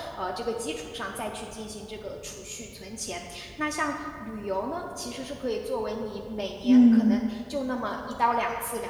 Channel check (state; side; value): identical; both; correlation 1.00